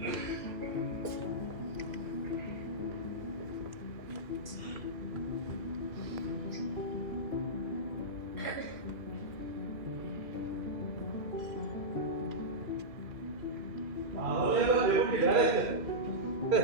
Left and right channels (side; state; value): left; late; 2.6 ms